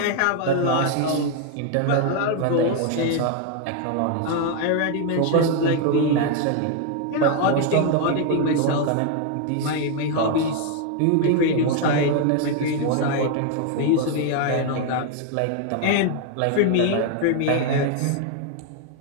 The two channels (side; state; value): both; different; correlation 0.01